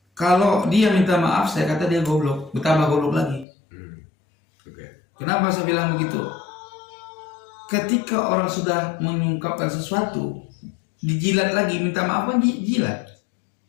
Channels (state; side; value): drops out; right; at 3.5 s